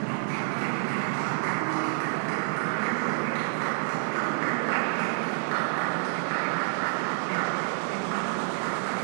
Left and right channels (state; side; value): silent; left; digital silence